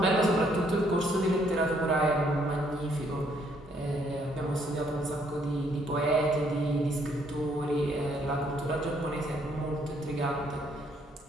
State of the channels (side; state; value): both; normal; correlation 0.68